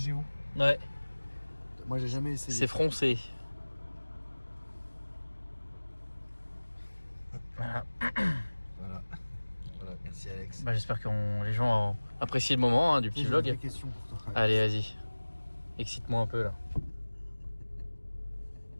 Ouais, Moi, j'ai jamais essayé. c'est froncé. Voilà. Voilà, merci Alex. Bah, j'espère que les gens ont apprécié le moment hein, du petit J'ai vlog. une vraie question pour toi. Allez, vas-y. Excite-moi un peu là.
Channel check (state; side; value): inverted; both; correlation -1.00